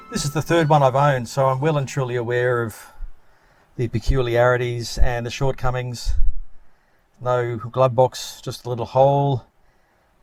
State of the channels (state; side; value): identical; both; correlation 1.00